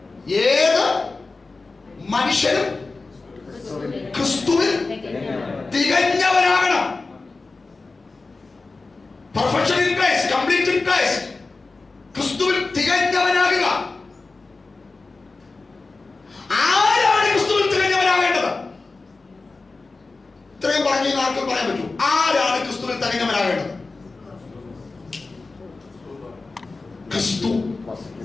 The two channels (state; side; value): quieter; right; 3.7 dB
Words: ഏത് മനുഷ്യനും ക്രിസ്തുവിൽ തികഞ്ഞവനാകണം. Perfection in Christ, complete in Christ. ക്രിസ്തുവിൽ തികഞ്ഞവനാകുക. ആരാണ് ക്രിസ്തുവിൽ തികഞ്ഞവനാകേണ്ടത്? ഇത്രയും പറഞ്ഞു ആർക്കും പറയാൻ പറ്റൂ. ആരാണ് ക്രിസ്തുവിൽ തികഞ്ഞവനാകേണ്ടത്? ക്രിസ്തു